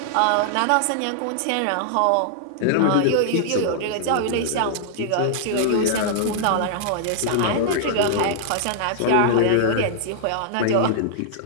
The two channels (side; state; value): both; different; correlation -0.01